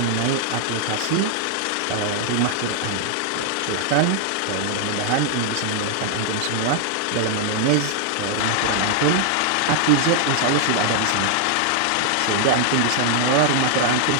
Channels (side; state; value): both; different; correlation 0.00